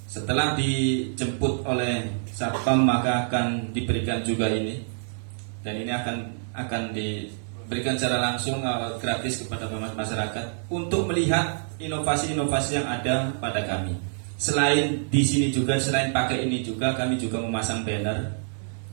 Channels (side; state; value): left; silent; digital silence